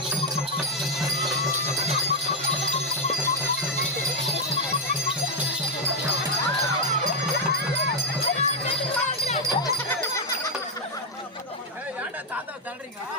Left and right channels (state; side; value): normal; both; correlation 0.01